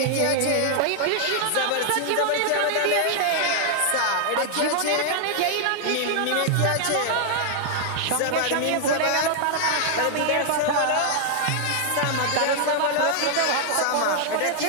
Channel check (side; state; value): both; different; correlation 0.00